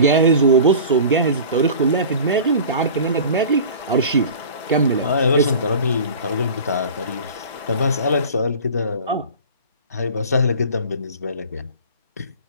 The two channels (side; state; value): both; inverted; correlation -0.38